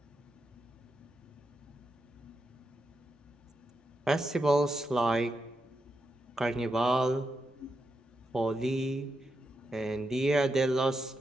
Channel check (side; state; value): both; normal; correlation 0.85